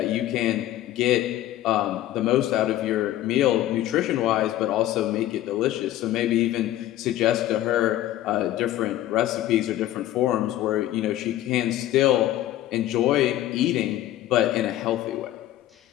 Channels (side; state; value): right; quieter; 13.8 dB